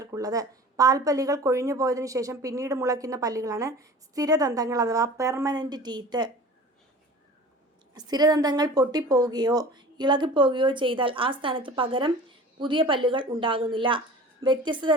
പാൽപ്പല്ലുകൾ കൊഴിഞ്ഞു പോയതിനു ശേഷം പിന്നീട് മുളയ്ക്കുന്ന പല്ലുകളാണ് സ്ഥിരദന്തങ്ങൾ അഥവാ പെർമനന്റ് ടീത്ത്. സ്ഥിരദന്തങ്ങൾ പൊട്ടിപ്പോവുകയോ ഇളകിപ്പോവുകയോ ചെയ്താൽ ആ സ്ഥാനത്ത് പകരം പുതിയ പല്ലുകൾ ഉണ്ടാകുന്നില്ല. വ്യത്യസ്ത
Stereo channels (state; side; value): normal; both; correlation 0.41